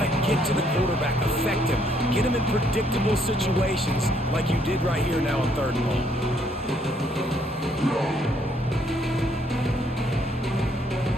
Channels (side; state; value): both; normal; correlation 0.69